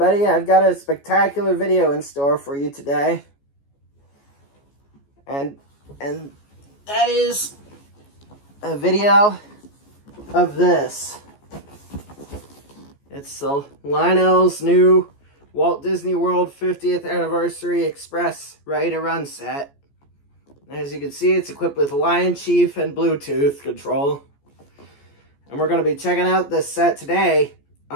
I've got a spectacular video in store for you today. And that is a video of this. It's Lionel's new Walt Disney World 50th Anniversary Express Ready to Run set. As you can see, it's equipped with LionChief and Bluetooth control. And we're going to be checking out this set today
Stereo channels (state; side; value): late; right; 14 ms